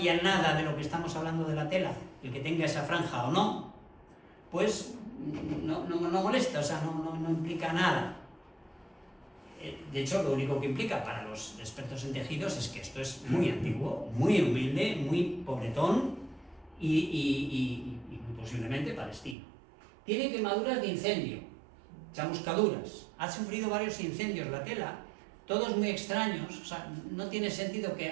nada de lo que estamos hablando de la tela, el que tenga esa franja o no, pues no molesta, o sea, no implica nada. De hecho, lo único que implica para los expertos en tejidos es que esto es muy antiguo, muy humilde, muy pobretón y posiblemente palestino. Tiene quemaduras de incendio, chamuscaduras, ha sufrido varios incendios la tela, todos muy extraños, o sea, no tiene sentido que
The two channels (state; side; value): drops out; left; at 19.4 s